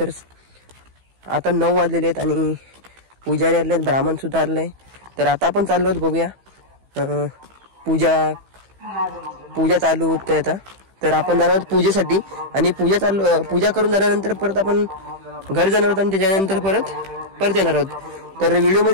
आता 9 वाजलेले आहेत आणि पुजारी आले आहेत, ब्राह्मण सुद्धा आले आहे. तर आता आपण चाललो आहोत, बघूया पूजा चालू होते आता. तर आपण जाणार आहोत पूजेसाठी आणि पूजा करून झाल्यानंतर परत आपण घर जाणार आहोत आणि त्याच्यानंतर परत येणार आहोत. तर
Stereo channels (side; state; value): left; late; 15 ms